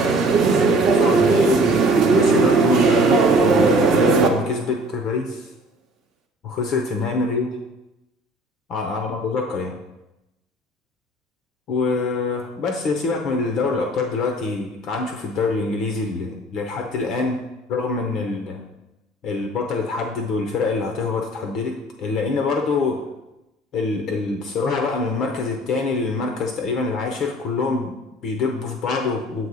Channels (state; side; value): normal; both; correlation 0.50